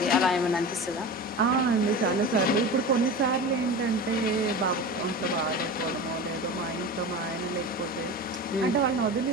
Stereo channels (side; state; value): both; normal; correlation 0.30